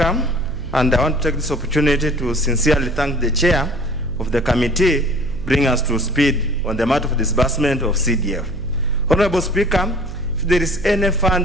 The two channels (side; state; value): right; noise; hum, 10 dB below the sound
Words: And I want to take this opportunity to sincerely thank the chair of the committee bringing us to speed on the matter of disbursement of CDF. Honorable Speaker, if there is any